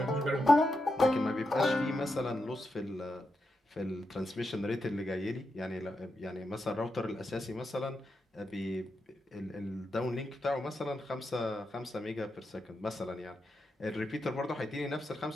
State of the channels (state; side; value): normal; both; correlation 0.86